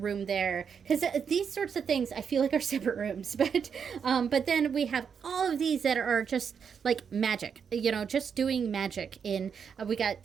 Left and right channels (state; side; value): quieter; left; 6.9 dB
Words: there. Because these sorts of things I feel like are separate rooms. But then we have all of these that are just like magic, just doing magic we